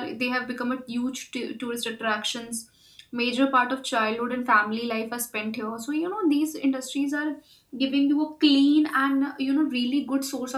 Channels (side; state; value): both; identical; correlation 1.00